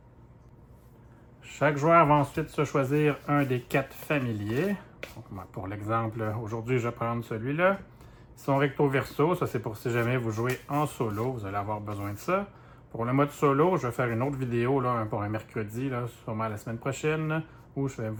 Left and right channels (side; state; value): both; identical; correlation 1.00